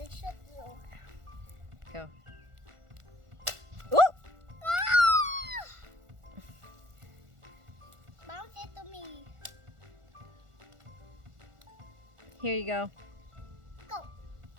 shoot you. Go. Ooh! Ah! Bounce it to me. Here you go. Go.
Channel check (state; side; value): late; left; 1.4 ms